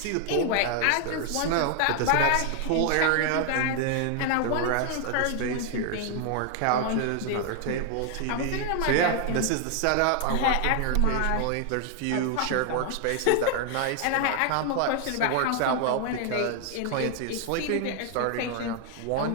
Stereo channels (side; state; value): both; different; correlation 0.00